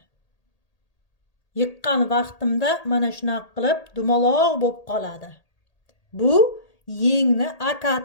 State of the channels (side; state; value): right; late; 1.8 ms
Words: Yiqqan vaqtimda mana shunaqa qilib dumaloq bo'lib qoladi. Bu yengni